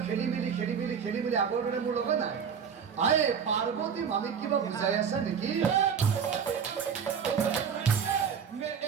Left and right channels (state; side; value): quieter; left; 7.0 dB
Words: খেলি মেলি আগৰ দৰে মোৰ লগত নাই আৰে পাৰ্বতী মামীক কিবা বুজাই আছা নেকি